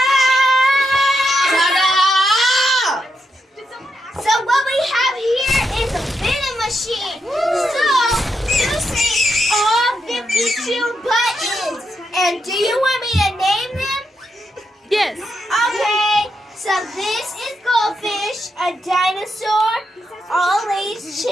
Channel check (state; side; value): normal; both; correlation 0.83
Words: So what we have here is a vending machine. So you see all 52 buttons. And do you want me to name them? Yes. Okay. So this is goldfish, a dinosaur, all Lay's